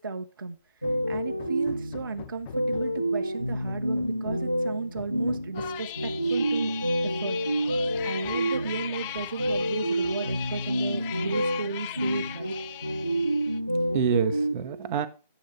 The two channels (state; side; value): inverted; both; correlation -0.82